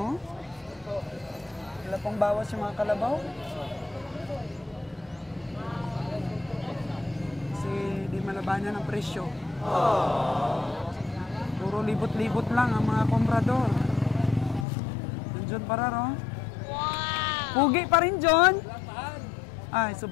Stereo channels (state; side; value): drops out; right; at 14.7 s